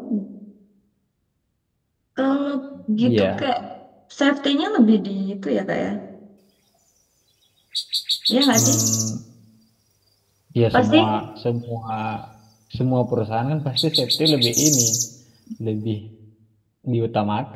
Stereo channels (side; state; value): both; identical; correlation 1.00